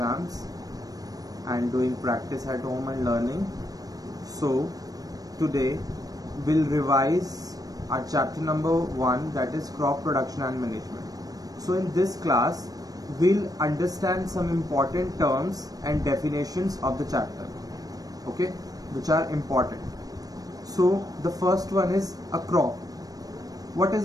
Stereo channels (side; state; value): left; late; 0.18 ms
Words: and doing practice at home and learning. So today we'll revise our chapter number 1, that is crop production and management. So in this class we'll understand some important terms and definitions of the chapter, okay, which are important. So the first one is a crop. What